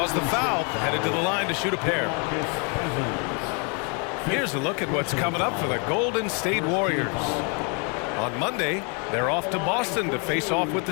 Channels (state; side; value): quieter; right; 36.2 dB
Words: the foul. Headed to the line to shoot a pair. Here's a look at what's coming up for the Golden State Warriors. On Monday, they're off to Boston to face off with the